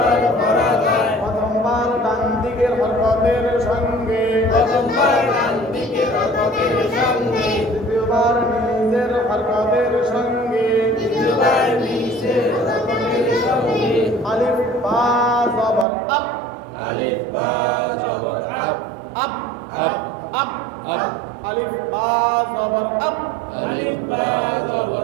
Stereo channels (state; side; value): drops out; left; at 15.9 s